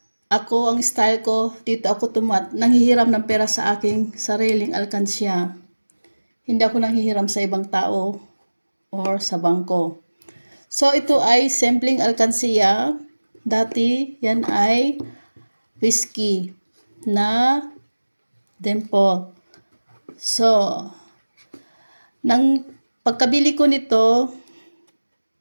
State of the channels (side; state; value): both; inverted; correlation -1.00